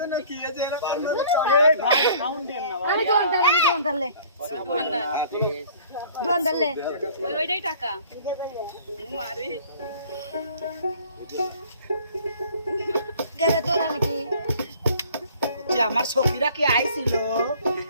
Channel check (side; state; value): both; inverted; correlation -0.52